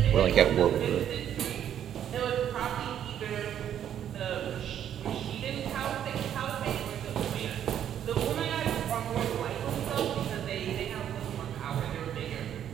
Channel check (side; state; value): left; quieter; 9.9 dB